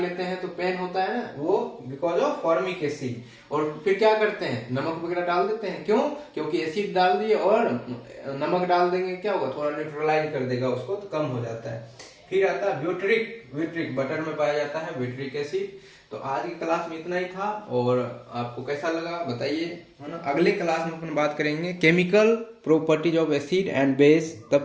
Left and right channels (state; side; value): identical; both; correlation 1.00